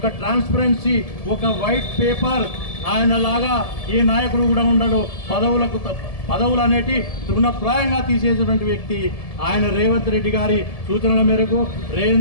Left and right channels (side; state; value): right; late; 1.7 ms